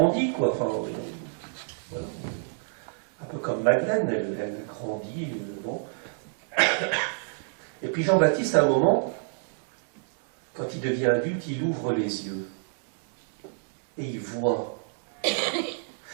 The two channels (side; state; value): left; silent; 60 dB below the other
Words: quoi. Enfin, voilà. Un peu comme Madeleine, elle grandit, bon. Et puis Jean-Baptiste, à un moment, quand il devient adulte, il ouvre les yeux. Et il voit.